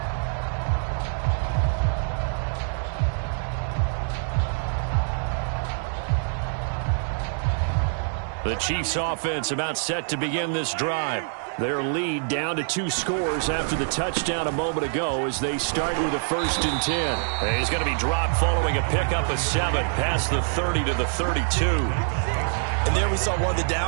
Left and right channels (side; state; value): left; silent; 62 dB below the other